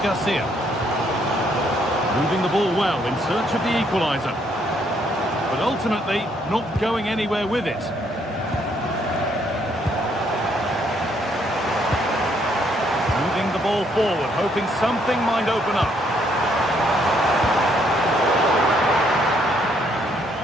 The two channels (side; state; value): both; normal; correlation 0.70